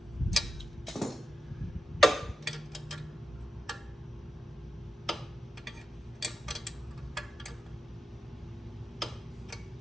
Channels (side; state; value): both; normal; correlation 0.89